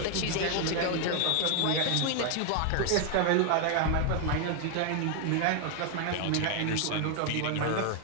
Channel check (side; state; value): both; different; correlation 0.00